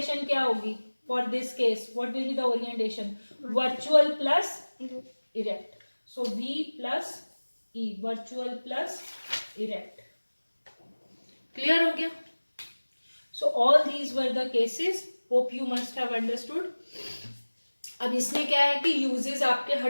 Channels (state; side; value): inverted; both; correlation -1.00